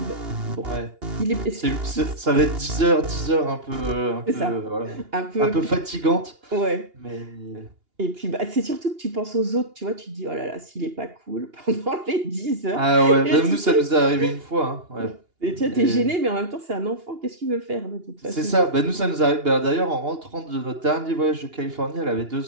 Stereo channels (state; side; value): late; left; 2.8 ms